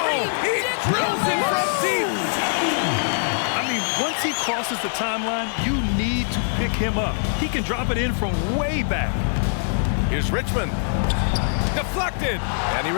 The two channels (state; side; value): silent; right; 58 dB below the other